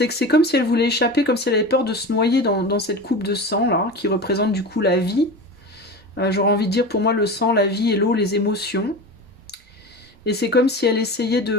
que c'est comme si elle voulait échapper, comme si elle avait peur de se noyer dans cette coupe de sang, là, qui représente du coup la vie. J'aurais envie de dire, pour moi, le sang, la vie et l'eau, les émotions. Et c'est comme si elle essayait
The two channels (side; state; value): both; normal; correlation 0.29